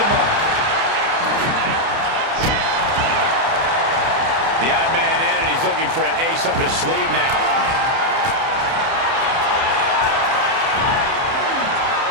mark. The odd man in, and he's looking for an ace up his sleeve now.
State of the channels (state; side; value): late; left; 30 ms